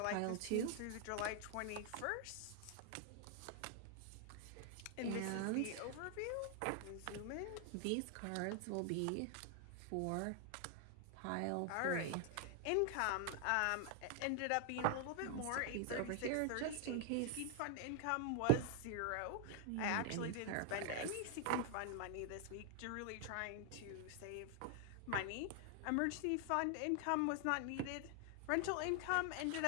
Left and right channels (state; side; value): different; both; correlation 0.00